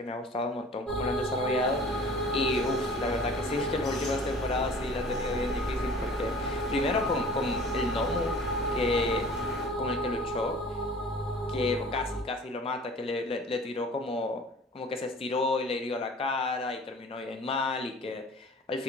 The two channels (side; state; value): both; normal; correlation 0.46